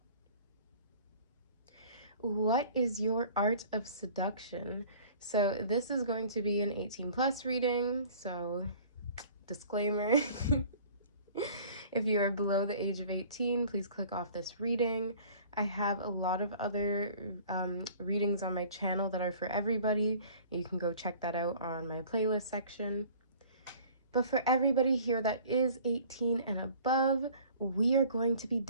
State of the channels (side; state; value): both; inverted; correlation -0.49